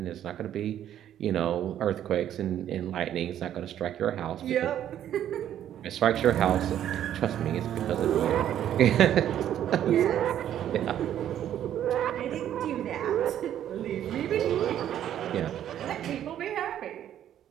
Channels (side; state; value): left; quieter; 10.9 dB